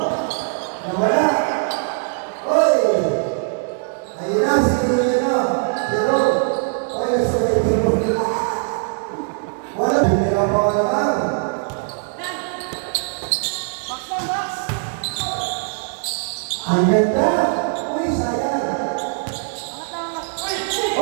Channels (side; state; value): left; silent; digital silence